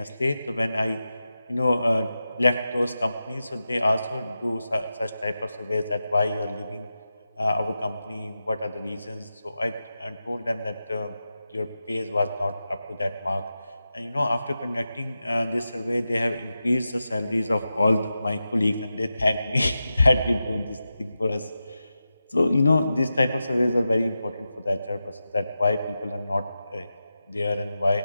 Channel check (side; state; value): both; inverted; correlation -0.91